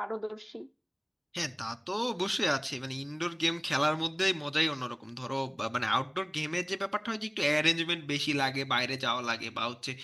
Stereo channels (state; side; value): identical; both; correlation 1.00